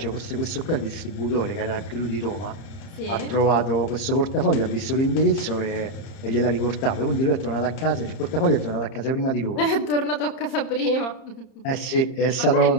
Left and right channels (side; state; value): right; late; 30 ms